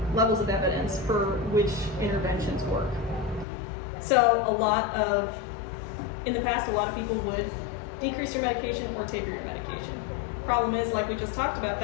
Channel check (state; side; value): drops out; right; at 3.5 s